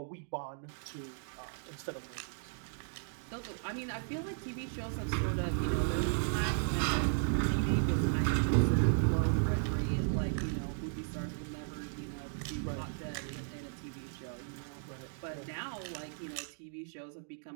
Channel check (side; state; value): left; silent; digital silence